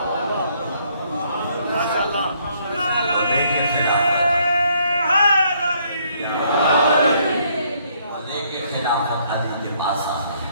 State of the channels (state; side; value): inverted; both; correlation -0.68